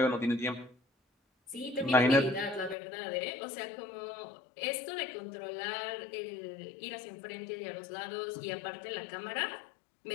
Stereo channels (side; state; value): right; drops out; at 2.8 s